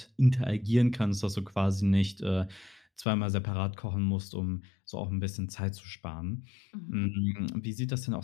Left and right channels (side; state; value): right; drops out; at 3.1 s